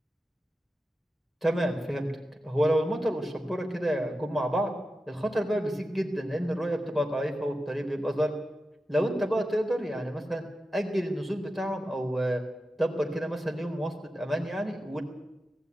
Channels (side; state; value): both; normal; correlation 0.91